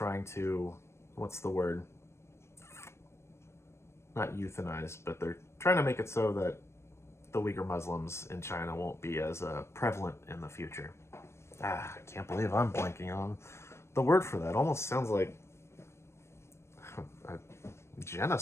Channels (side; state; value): right; late; 0.13 ms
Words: to, what's the word? Not euthanize, but they're trying to make it so that the Uyghur Muslims in China won't be as prevalent in the future. I can't believe I'm blanking on the word for that. Almost sounds like a